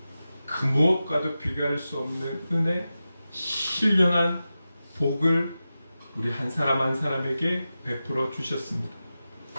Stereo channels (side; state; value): both; inverted; correlation -0.93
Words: 그 무엇과도 비교할 수 없는 은혜, 신령한 복을 우리 한 사람 한 사람에게 베풀어 주셨습니다.